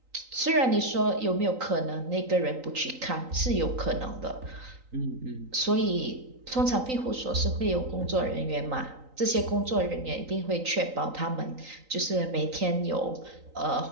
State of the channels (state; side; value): late; left; 3.9 ms